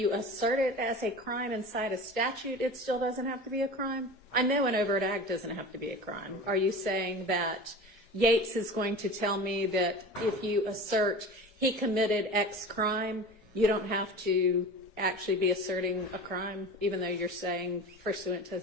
assert it as a crime inside a statute, it still doesn't have to be a crime? I know an overt act doesn't have to be a crime. Are you saying that Yates is going to tell me that if you assert he committed X crime, you don't have to actually be asserting a crime, even though you're saying pursuant to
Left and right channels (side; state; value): both; normal; correlation 0.34